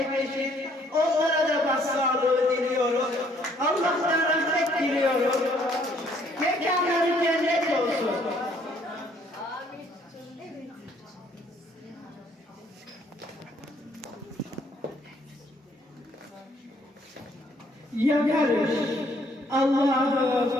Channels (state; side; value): normal; both; correlation 0.65